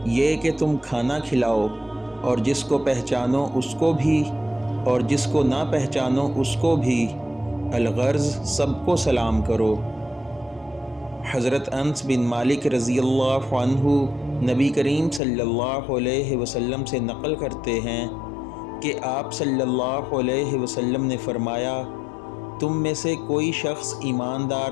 یہ کہ تم کھانا کھلاؤ اور جس کو پہچانو اس کو بھی اور جس کو نہ پہچانو اس کو بھی، الغرض سب کو سلام کرو۔ حضرت انس بن مالک رضی اللہ عنہ نبی کریم صلی اللہ علیہ وسلم سے نقل کرتے ہیں کہ آپ صلی اللہ علیہ وسلم نے فرمایا، تم میں سے کوئی شخص ایماندار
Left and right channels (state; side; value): drops out; right; at 15.2 s